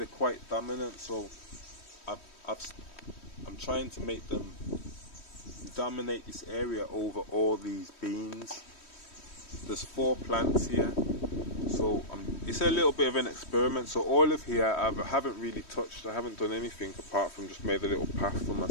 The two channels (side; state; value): right; late; 3.1 ms